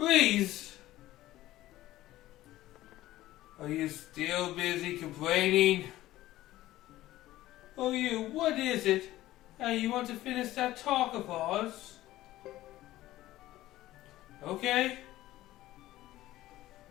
Are you still busy complaining? Oh, what is it? You want to finish that talk of ours? Okay.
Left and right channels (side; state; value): right; quieter; 15.6 dB